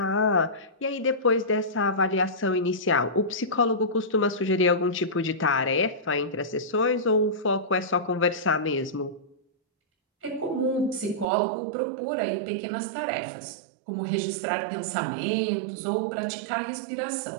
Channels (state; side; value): drops out; left; at 11.2 s